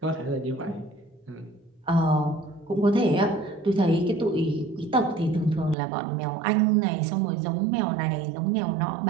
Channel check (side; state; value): left; drops out; at 5.8 s